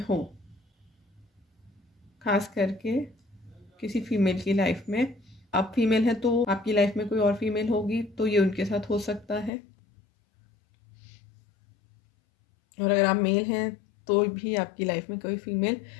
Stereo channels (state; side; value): drops out; right; at 9.5 s